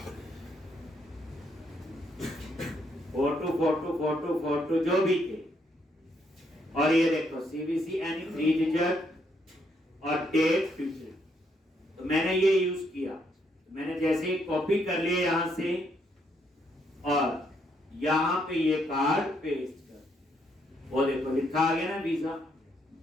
फोटो जो भी थे। और ये देखो सीवीसी एनी 3 डिजिट और डेट फ्यूचर, तो मैंने ये यूज किया। मैंने जैसे कॉपी कर लिया यहां से और यहां पे ये कार्ड पेस्ट कर, वो देखो लिखा आ गया ना वीजा।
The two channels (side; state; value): both; normal; correlation 0.74